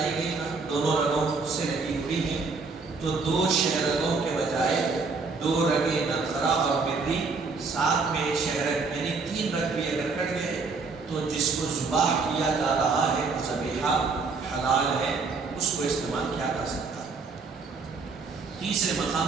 گئی نا، دونوں رگوں سے لگی ہوئی ہیں، تو 2 شہرگوں کے بجائے 2 رگیں نرخرا اور مری، ساتھ میں ایک شہرگ یعنی 3 رگ بھی اگر کٹ گئے تو جس کو ذبح کیا جا رہا ہے ذبیحہ حلال ہے، اس کو استعمال کیا جا سکتا ہے. تیسرے مقام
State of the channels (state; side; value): quieter; left; 4.4 dB